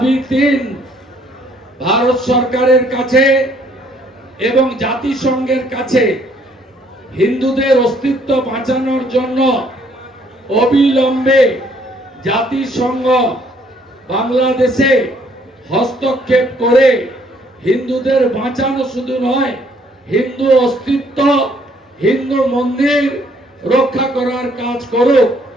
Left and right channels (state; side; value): normal; both; correlation 0.65